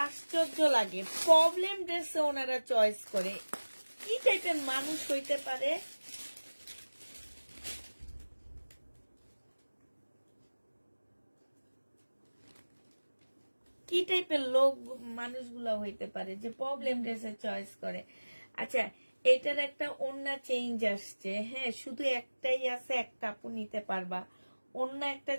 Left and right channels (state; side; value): inverted; both; correlation -1.00